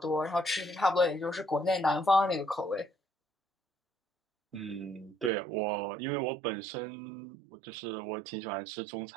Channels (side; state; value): left; drops out; at 5.3 s